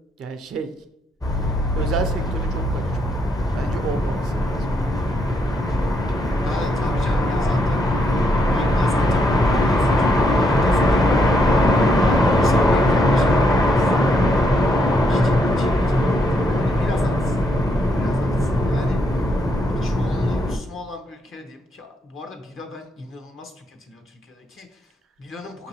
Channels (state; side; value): normal; both; correlation 0.76